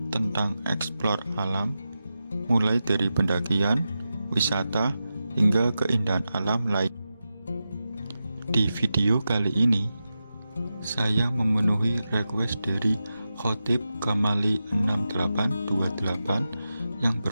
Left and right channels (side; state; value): both; inverted; correlation -0.91